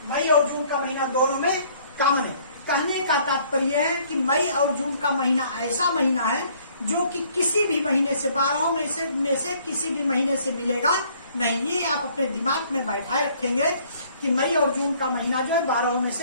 मई और जून का महीना दोनों में कॉमन है। कहने का तात्पर्य है कि मई और जून का महीना ऐसा महीना है जो कि किसी भी महीने से 12 में से किसी भी महीने से मिलेगा नहीं। ये आप अपने दिमाग में बैठाए रखेंगे कि मई और जून का महीना जो है 12 में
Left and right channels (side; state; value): both; inverted; correlation -0.60